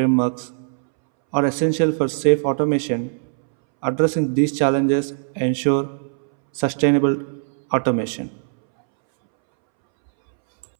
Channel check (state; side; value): silent; left; 65 dB below the other